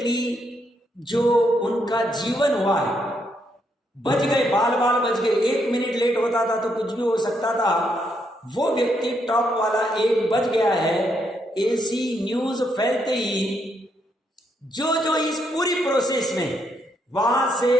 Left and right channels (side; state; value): both; normal; correlation 0.76